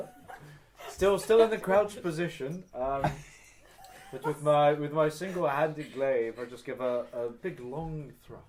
Still in the crouched position. But with my single-handed glaive, I just give a big long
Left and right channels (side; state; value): both; identical; correlation 1.00